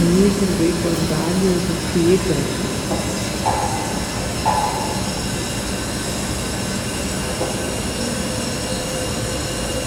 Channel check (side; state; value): both; identical; correlation 1.00